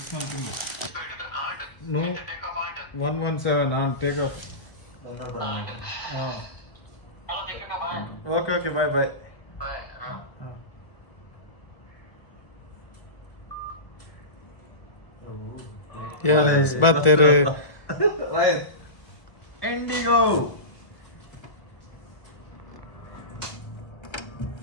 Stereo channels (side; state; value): right; late; 1.2 ms